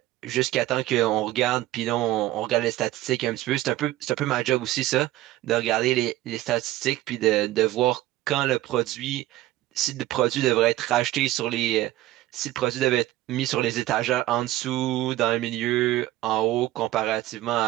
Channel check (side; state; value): left; quieter; 15.6 dB